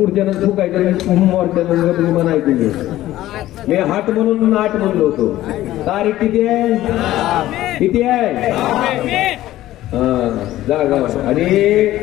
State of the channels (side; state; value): right; quieter; 14.7 dB